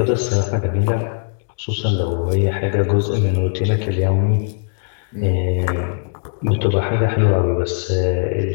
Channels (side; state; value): right; silent; digital silence